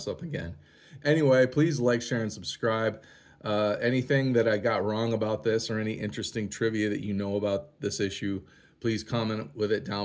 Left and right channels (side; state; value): both; identical; correlation 1.00